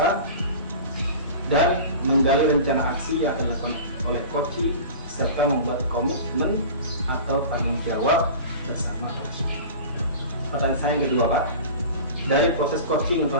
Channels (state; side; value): inverted; both; correlation -0.36